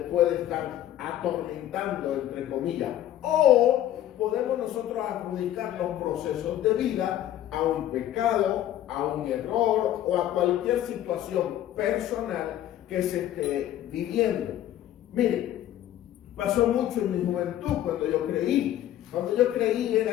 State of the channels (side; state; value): right; quieter; 12.3 dB